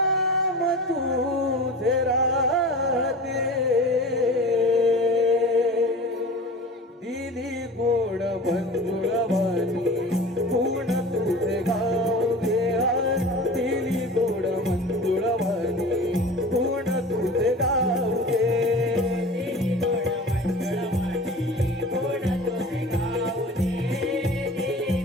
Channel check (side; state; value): both; normal; correlation 0.37